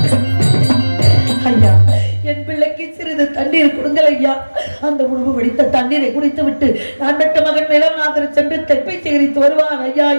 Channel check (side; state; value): both; inverted; correlation -1.00